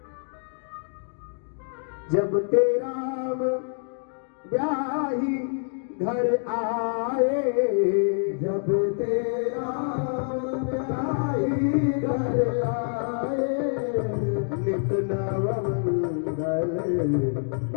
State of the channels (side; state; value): right; silent; digital silence